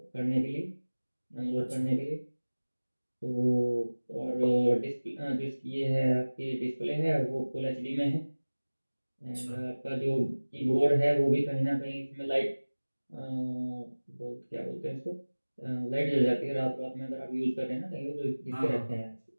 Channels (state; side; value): inverted; both; correlation -1.00